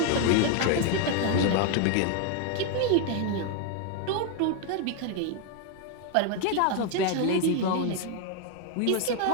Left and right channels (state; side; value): different; both; correlation 0.01